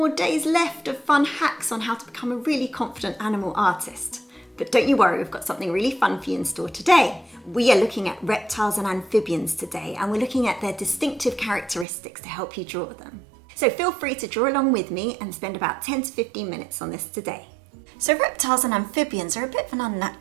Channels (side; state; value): left; drops out; at 11.9 s